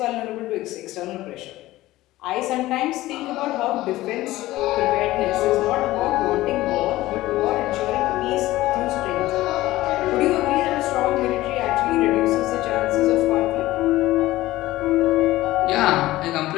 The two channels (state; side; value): quieter; right; 16.9 dB